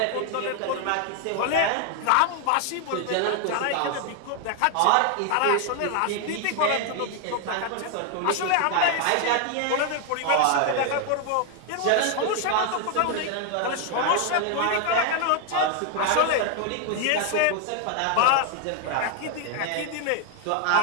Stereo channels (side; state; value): both; different; correlation 0.01